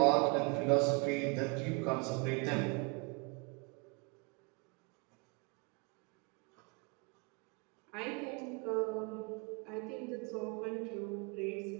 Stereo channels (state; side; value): quieter; left; 31.8 dB